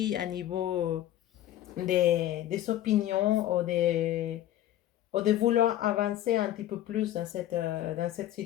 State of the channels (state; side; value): quieter; right; 12.9 dB